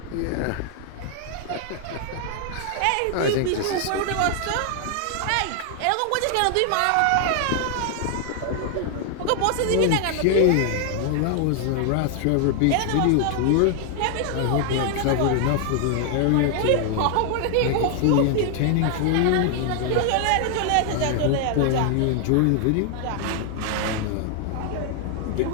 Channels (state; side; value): different; both; correlation 0.00